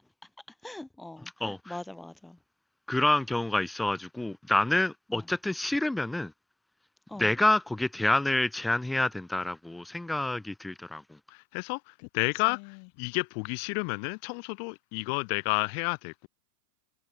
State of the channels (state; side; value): drops out; right; at 11.2 s